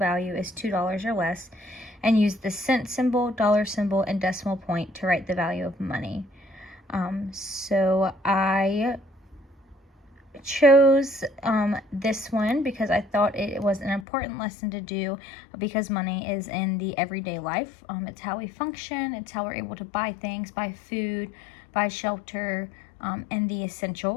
is $2 or less, and use the cent symbol, dollar symbol, and decimal point to write the value of money. So I chose this one because I thought it was an important lesson to do, because money is in the everyday life. It's how we function, it's how we're able to buy things, buy food, buy shelter, and the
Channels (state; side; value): drops out; right; at 14.1 s